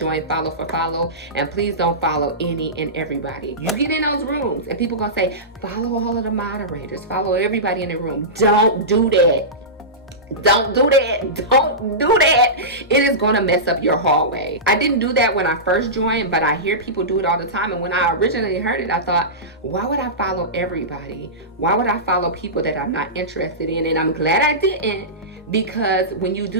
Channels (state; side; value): normal; both; correlation -0.18